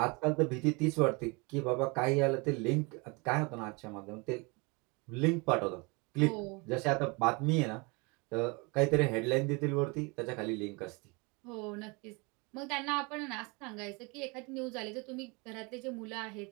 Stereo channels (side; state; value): left; quieter; 28.8 dB